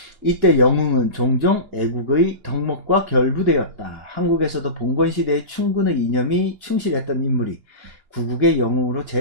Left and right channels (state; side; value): late; left; 2.9 ms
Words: 이때 영웅은 종종 애국의 덕목과 결부되었다. 한국에서도 봉건시대의 충군의 이념이 충실했던 인물이 구국의 영웅으로